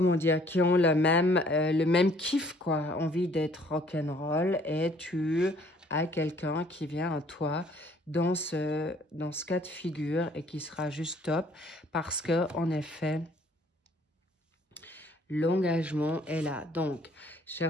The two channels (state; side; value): normal; both; correlation 0.59